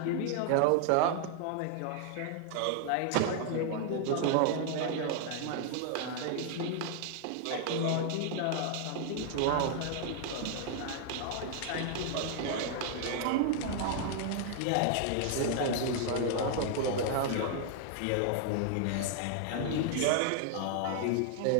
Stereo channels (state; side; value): different; both; correlation 0.00